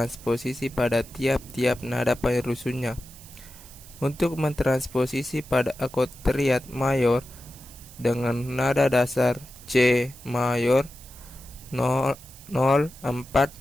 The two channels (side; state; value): right; noise; hiss, 20 dB below the sound